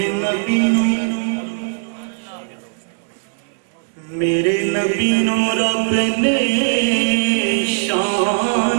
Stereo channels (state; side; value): silent; left; digital silence